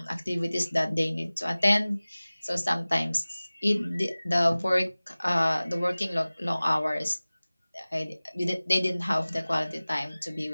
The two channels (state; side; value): inverted; both; correlation -0.99